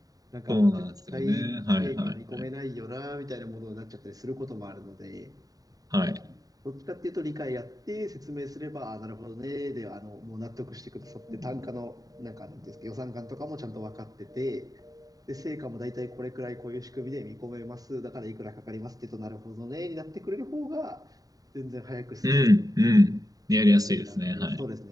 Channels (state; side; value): late; left; 0.18 ms